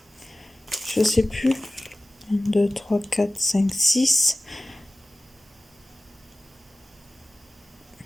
je sais plus, 1, 2, 3, 4, 5, 6,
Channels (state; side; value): normal; both; correlation 0.96